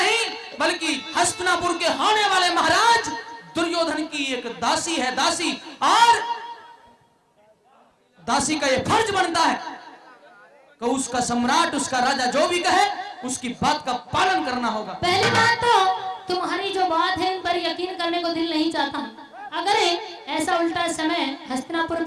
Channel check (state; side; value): identical; both; correlation 1.00